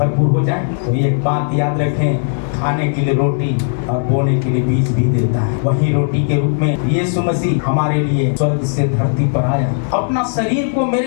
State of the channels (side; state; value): right; silent; digital silence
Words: हो जाए? तो एक बात याद रखें, खाने के लिए रोटी और बोने के लिए बीज भी देता है। वही रोटी के रूप में यीशु मसीह हमारे लिए स्वर्ग से धरती पर आया, अपना शरीर को